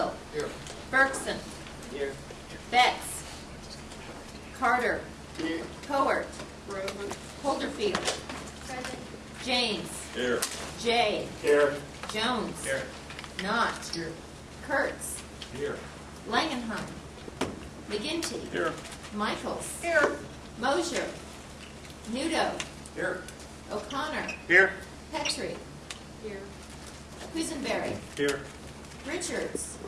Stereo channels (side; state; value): both; identical; correlation 1.00